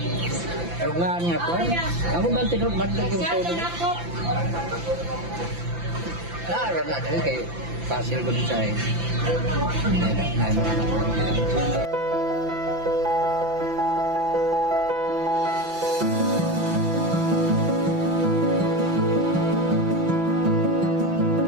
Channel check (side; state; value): left; late; 5.9 ms